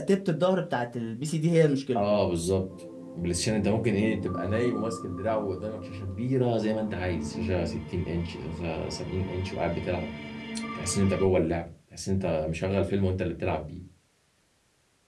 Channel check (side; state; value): both; identical; correlation 1.00